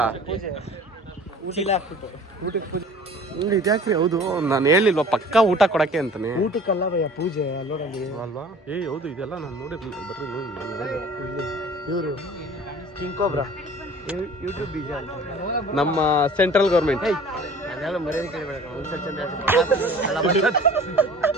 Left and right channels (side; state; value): both; normal; correlation 0.46